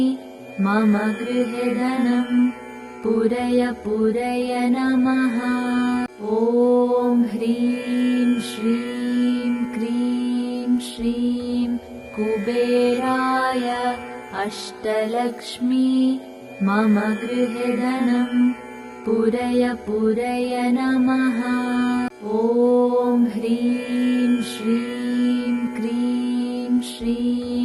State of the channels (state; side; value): identical; both; correlation 1.00